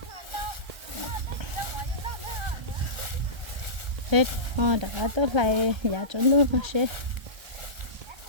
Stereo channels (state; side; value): late; left; 1.3 ms